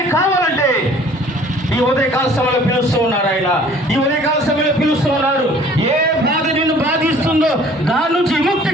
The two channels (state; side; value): normal; both; correlation 0.52